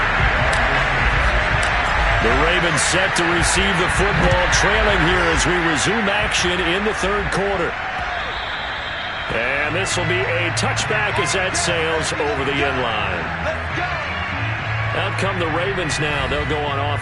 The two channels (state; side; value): identical; both; correlation 1.00